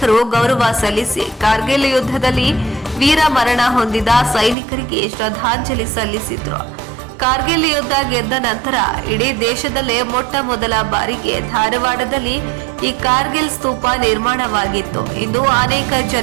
ಗೌರವ ಸಲ್ಲಿಸಿ ಕಾರ್ಗಿಲ್ ಯುದ್ಧದಲ್ಲಿ ವೀರ ಮರಣ ಹೊಂದಿದ ಸೈನಿಕರಿಗೆ ಶ್ರದ್ಧಾಂಜಲಿ ಸಲ್ಲಿಸಿದ್ರು. ಕಾರ್ಗಿಲ್ ಯುದ್ಧ ಗೆದ್ದ ನಂತರ ಇಡೀ ದೇಶದಲ್ಲೇ ಮೊಟ್ಟ ಮೊದಲ ಬಾರಿಗೆ ಧಾರವಾಡದಲ್ಲಿ ಈ ಕಾರ್ಗಿಲ್ ಸ್ತೂಪ ನಿರ್ಮಾಣವಾಗಿತ್ತು. ಇಂದು ಅನೇಕ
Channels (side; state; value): left; drops out; at 4.5 s